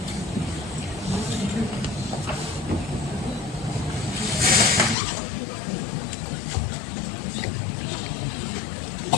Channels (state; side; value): drops out; right; at 5.0 s